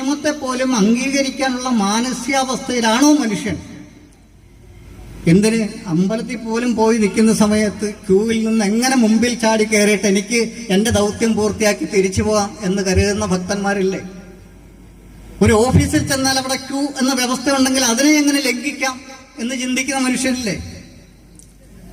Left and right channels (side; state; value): both; identical; correlation 1.00